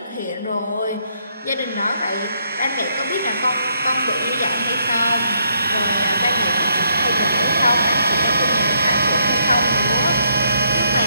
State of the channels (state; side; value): inverted; both; correlation -0.73